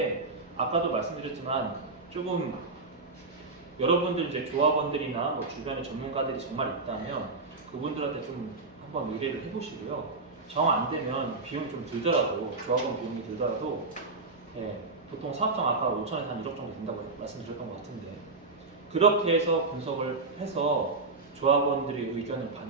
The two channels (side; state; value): left; quieter; 3.7 dB